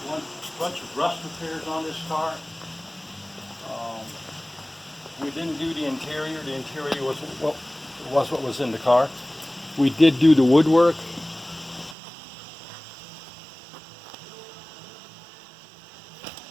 bunch of rust repairs on this car. We didn't do the interior. The interior was what was in the car. We did do the woodwork.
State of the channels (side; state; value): left; drops out; at 12.0 s